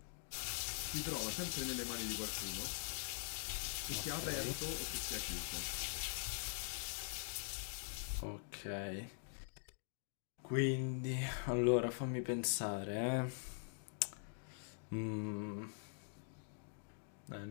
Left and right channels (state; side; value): silent; right; digital silence